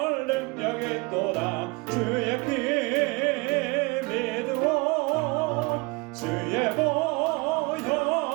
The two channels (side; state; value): left; quieter; 26.8 dB